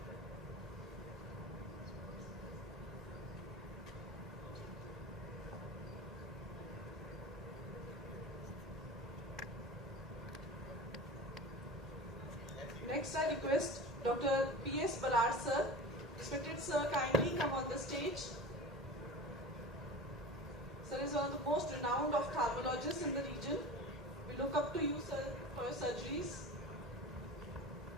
Next, I request Dr. P.S. Barar sir. Respected sir, kindly come on the stage. Sir is one of the most renowned ophthalmologists in the region. We look up to you, sir, for your surgeries.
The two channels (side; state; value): both; normal; correlation 0.33